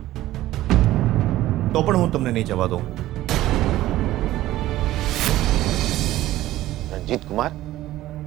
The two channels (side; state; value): left; quieter; 15.3 dB